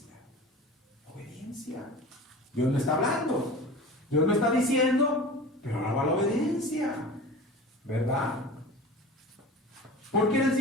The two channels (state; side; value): normal; both; correlation 0.36